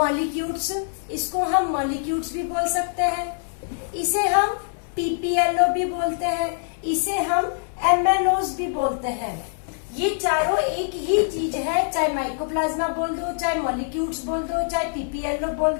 इसको हम molecules भी बोल सकते हैं, इसे हम PPLO भी बोलते हैं, इसे हम MNOs भी बोलते हैं. ये चारों एक ही चीज है, चाहे माइकोप्लाज्मा बोल दो, चाहे मॉलिक्यूल्स बोल दो, चाहे पीपीएलओ बोल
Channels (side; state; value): right; silent; digital silence